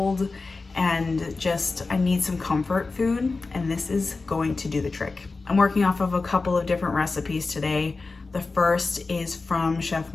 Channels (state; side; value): quieter; right; 3.9 dB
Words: and just, I need some comfort food, and this is going to do the trick. I'm working off of a couple of different recipes today. The first is from Chef